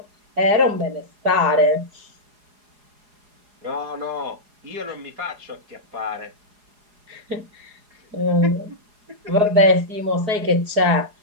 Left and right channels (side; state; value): left; late; 4.8 ms